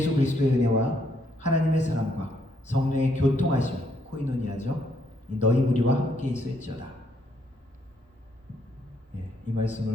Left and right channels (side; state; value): both; normal; correlation 0.72